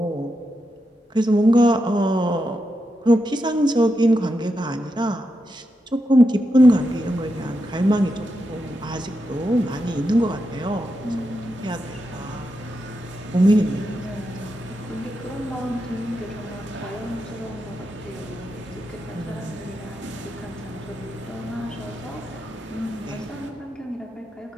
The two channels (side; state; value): both; normal; correlation 0.86